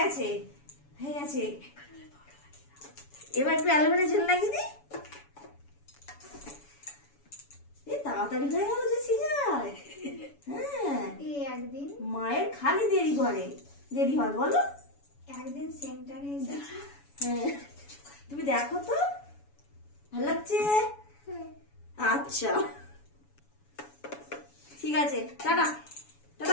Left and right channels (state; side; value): late; right; 7.1 ms